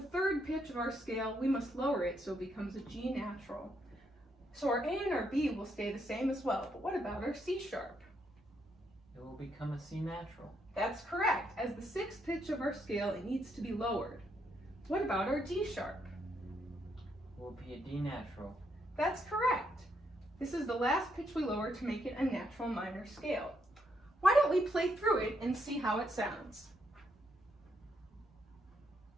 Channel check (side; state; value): both; normal; correlation 0.76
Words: 3rd pitch of our scale, we must lower it so it becomes a G natural. So our A and our B will stay the same as well. But what about our C sharp? It will become a C natural. That's correct. As the 6th pitch of our scale, it needs to be lowered. What about our D sharp? It will be a D natural. That's correct. This is the last pitch we lower to make it a natural minor scale. Why don't we play through it and see how it sounds?